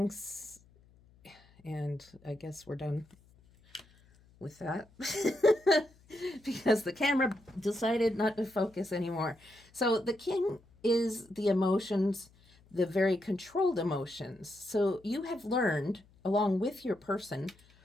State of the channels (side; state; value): left; noise; hum, 29 dB below the sound